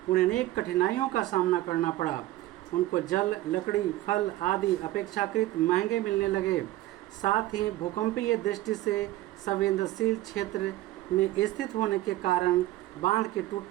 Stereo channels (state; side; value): quieter; left; 15.9 dB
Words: उन्हें अनेक कठिनाइयों का सामना करना पड़ा। उनको जल, लकड़ी, फल आदि अपेक्षाकृत महंगे मिलने लगे। साथ ही भूकंपीय दृष्टि से संवेदनशील क्षेत्र में स्थित होने के कारण बांध के